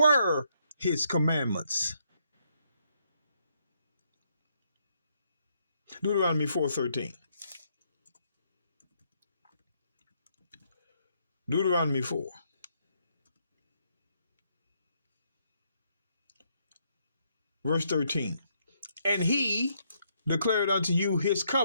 his commandments. Deuteronomy 4:13. Deuteronomy 4. Verse 13. And he declared unto you his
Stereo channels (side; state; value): both; inverted; correlation -0.74